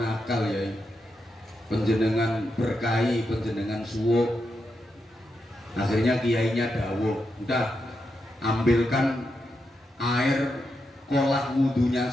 nakal yai, panjenengan berkahi, panjenengan suwuk. Akhirnya kiainya dawuh, udah ambilkan air kolah wudunya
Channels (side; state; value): both; normal; correlation 0.85